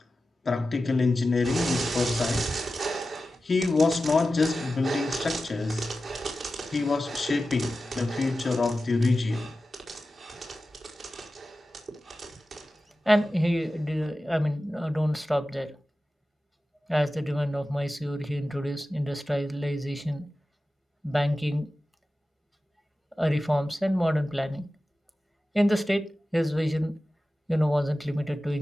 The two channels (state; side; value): normal; both; correlation 0.94